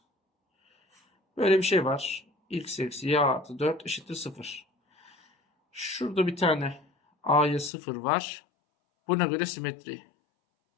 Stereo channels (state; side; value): drops out; right; at 7.7 s